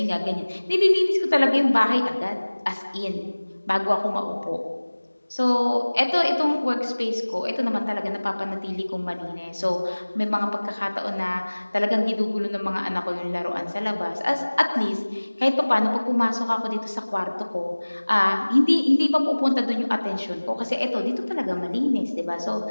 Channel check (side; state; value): both; inverted; correlation -1.00